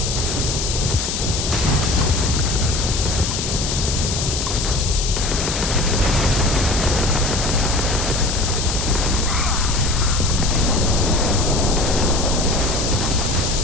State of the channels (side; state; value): left; noise; hiss, 3 dB below the sound